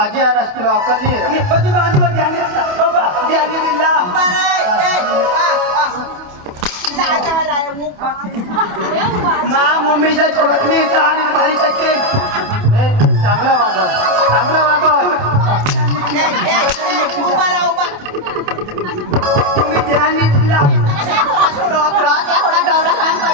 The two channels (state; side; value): late; left; 27 ms